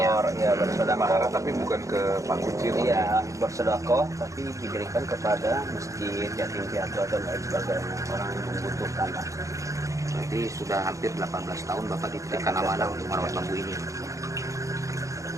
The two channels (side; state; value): left; late; 0.15 ms